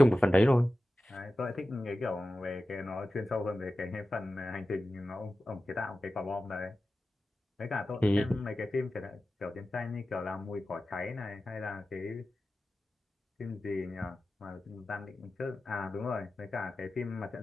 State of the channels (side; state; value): both; normal; correlation 0.94